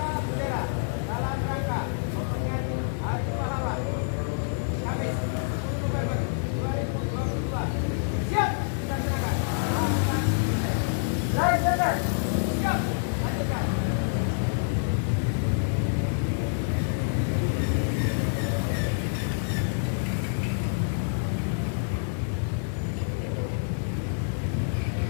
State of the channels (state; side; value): silent; right; 60 dB below the other